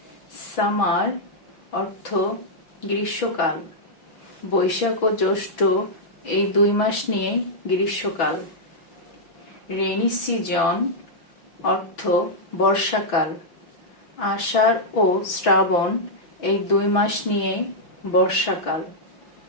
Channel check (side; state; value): right; late; 6.1 ms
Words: সামার অর্থ গ্রীষ্মকাল, বৈশাখ ও জ্যৈষ্ঠ এই 2 মাস নিয়ে গ্রীষ্মকাল। রেইনি সিজন অর্থ বর্ষাকাল, আষাঢ় ও শ্রাবণ এই 2 মাস নিয়ে বর্ষাকাল।